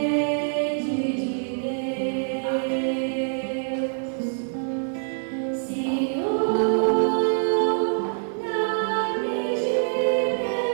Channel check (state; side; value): silent; left; digital silence